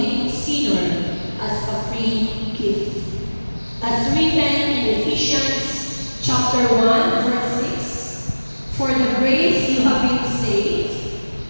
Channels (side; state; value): both; inverted; correlation -1.00